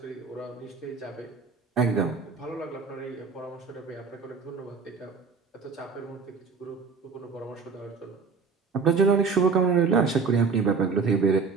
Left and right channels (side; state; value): left; quieter; 5.0 dB